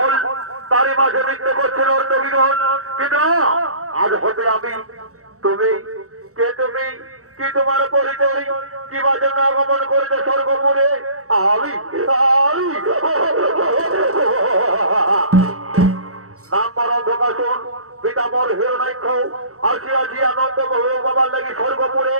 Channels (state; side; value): late; left; 0.65 ms